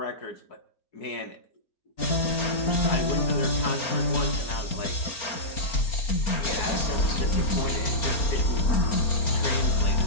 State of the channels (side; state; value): right; late; 4.3 ms